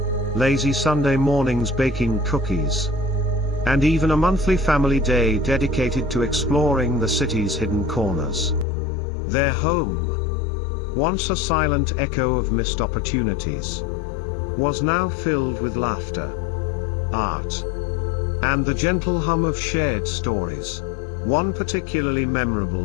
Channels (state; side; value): drops out; right; at 8.7 s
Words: lazy Sunday mornings baking cookies, and even a monthly family day dedicated to exploring the city's hidden corners. Their home, once a silent echo of missed opportunities, was now filled with laughter, art, and the gentle hum of shared stories. One particularly